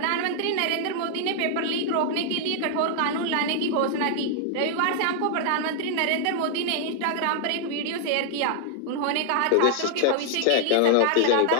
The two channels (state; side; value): different; both; correlation 0.00